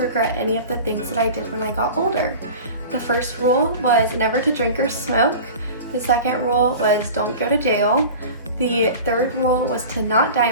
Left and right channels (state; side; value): inverted; both; correlation -0.36